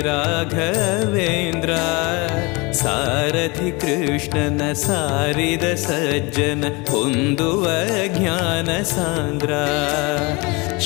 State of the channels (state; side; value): quieter; right; 26.6 dB